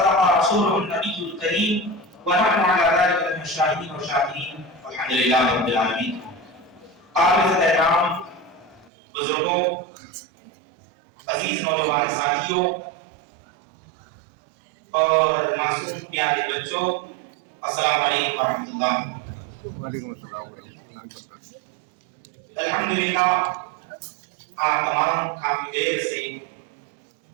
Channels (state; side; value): drops out; left; at 8.9 s